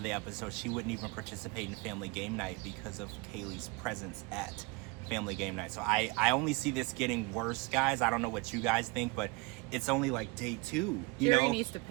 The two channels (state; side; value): quieter; left; 26.1 dB